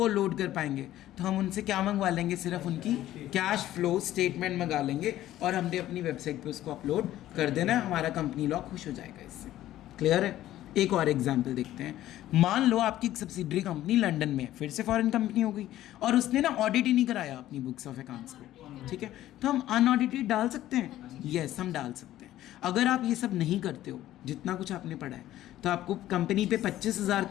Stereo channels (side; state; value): right; quieter; 13.8 dB